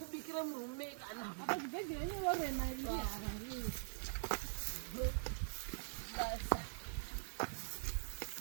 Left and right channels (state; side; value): silent; left; digital silence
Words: murume kana apa zvibhedhera nyorena